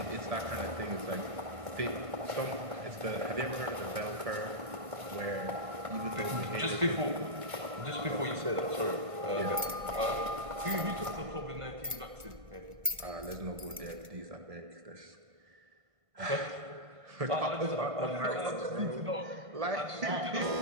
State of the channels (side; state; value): left; late; 1.5 ms